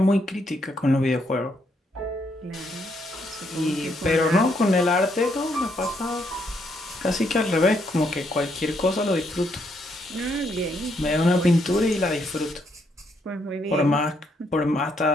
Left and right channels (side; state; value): both; normal; correlation 0.74